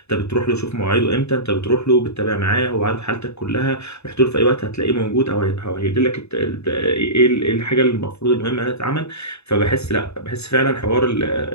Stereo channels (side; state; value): right; late; 0.80 ms